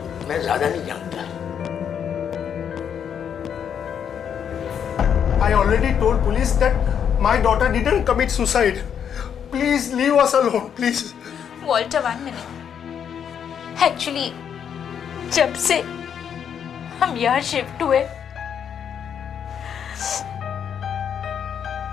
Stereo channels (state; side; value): quieter; right; 8.2 dB